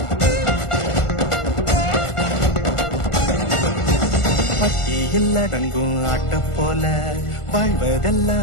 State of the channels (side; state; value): right; late; 1.4 ms